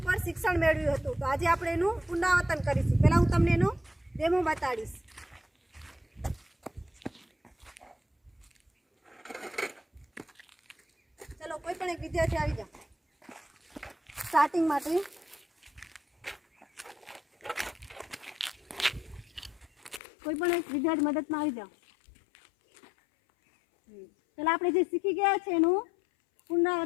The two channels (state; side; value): drops out; right; at 20.0 s